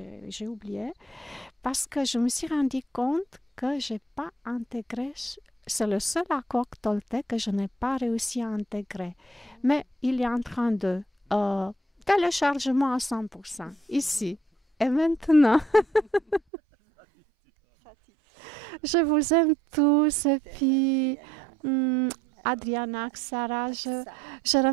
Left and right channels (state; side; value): drops out; left; at 16.4 s